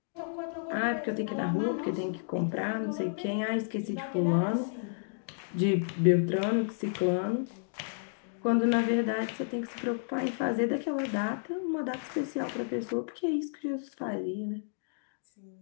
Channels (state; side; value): silent; right; digital silence